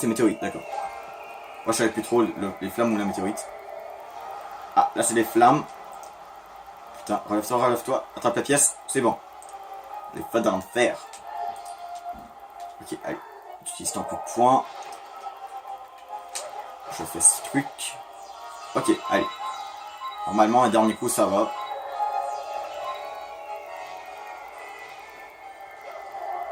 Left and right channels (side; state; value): both; identical; correlation 1.00